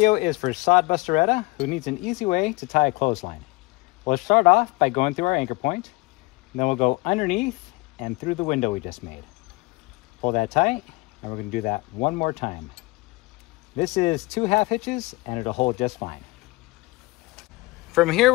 is for Sod Busteretta, who needs an easy way to tie a clothesline. We'll start off by going through our anchor point, and then we'll go underneath and through the window we just made. Pull that tight, and we're going to do that one more time. This is 2 half hitches, and it'll hold just fine. From here,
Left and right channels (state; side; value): quieter; right; 23.4 dB